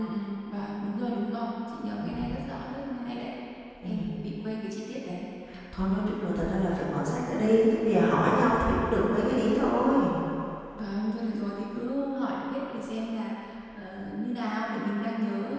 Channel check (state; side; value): identical; both; correlation 1.00